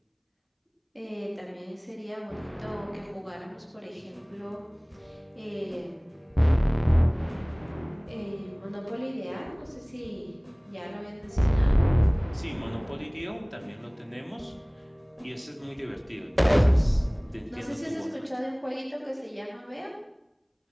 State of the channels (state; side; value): identical; both; correlation 1.00